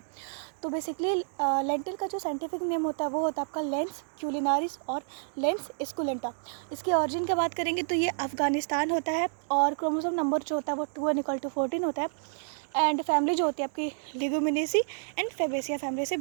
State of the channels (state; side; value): silent; left; digital silence